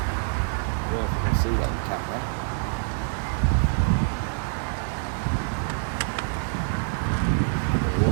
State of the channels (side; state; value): left; silent; 61 dB below the other